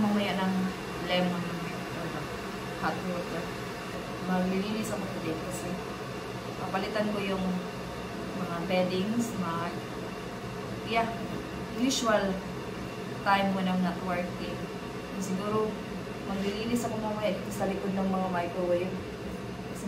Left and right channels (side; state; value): both; identical; correlation 1.00